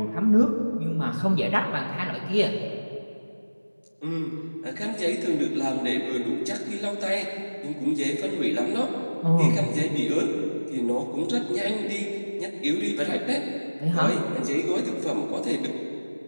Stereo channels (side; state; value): both; inverted; correlation -1.00